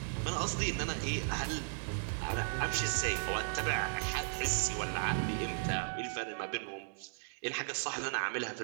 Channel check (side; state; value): left; silent; digital silence